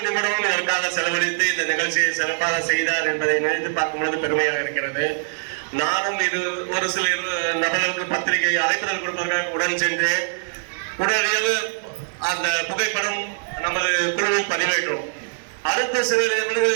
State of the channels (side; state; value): left; silent; 64 dB below the other